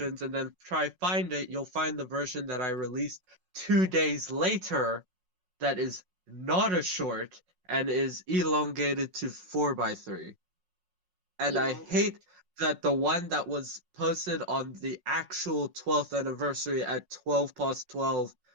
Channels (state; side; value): late; left; 5.5 ms